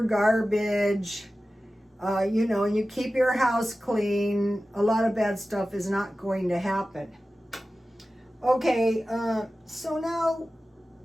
garbage, you know, and you keep your house clean. A lot of bad stuff is not going to happen. Okay, so now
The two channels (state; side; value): normal; both; correlation 0.95